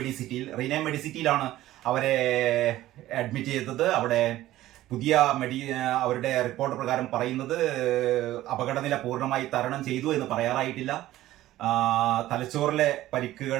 മെഡിസിറ്റിയിലാണ് അവരെ അഡ്മിറ്റ് ചെയ്തത്. അവിടെ പുതിയ അവരുടെ റിപ്പോർട്ട് പ്രകാരം പറയുന്നത് അപകടനില പൂർണ്ണമായി തരണം ചെയ്തു എന്ന് പറയാറായിട്ടില്ല. തലച്ചോറിലെ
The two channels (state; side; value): quieter; left; 15.1 dB